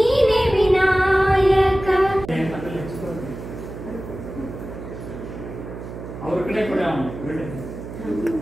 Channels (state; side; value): noise; right; hum, 11 dB below the sound